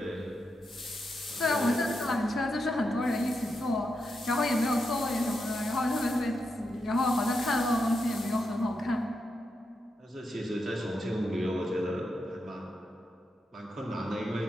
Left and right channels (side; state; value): both; normal; correlation 0.85